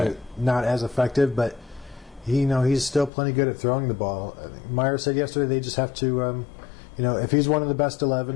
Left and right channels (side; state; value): right; drops out; at 3.1 s